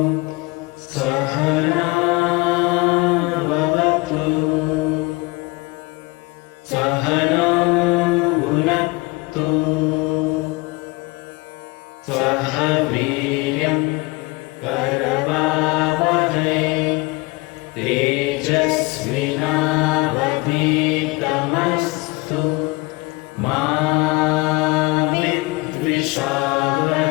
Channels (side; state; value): right; quieter; 24.3 dB